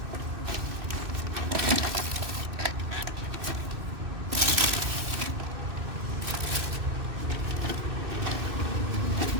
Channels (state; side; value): late; left; 2.6 ms